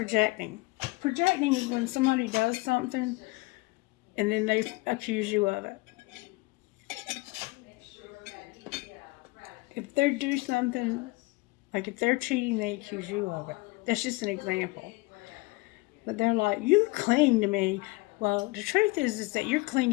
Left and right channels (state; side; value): quieter; right; 23.8 dB